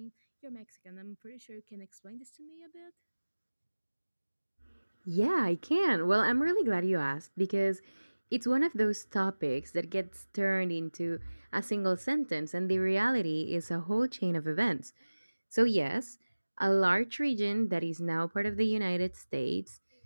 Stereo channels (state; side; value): inverted; both; correlation -1.00